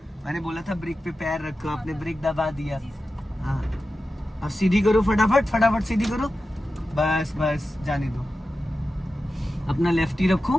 मैंने बोला था ब्रेक पे पैर रखो, आपने ब्रेक दबा दिया। हाँ, अब सीधी करो, फटाफट फटाफट सीधी करो, बस बस, जाने दो। अपना लेफ्ट ही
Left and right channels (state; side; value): normal; both; correlation 0.93